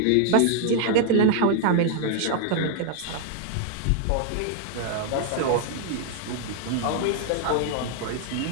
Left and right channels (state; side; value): different; both; correlation 0.00